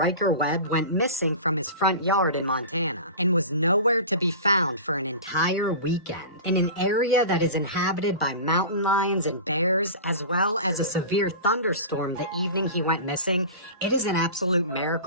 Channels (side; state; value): both; inverted; correlation -0.33